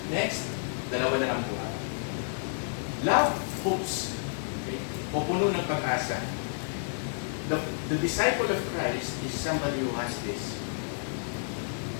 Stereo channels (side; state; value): right; silent; 58 dB below the other